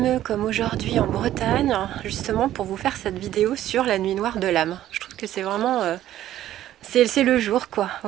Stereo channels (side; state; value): left; quieter; 12.9 dB